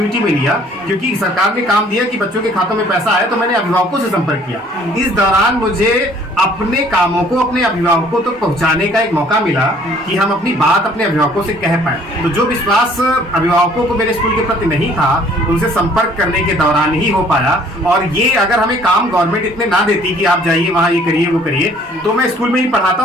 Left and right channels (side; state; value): both; normal; correlation 0.58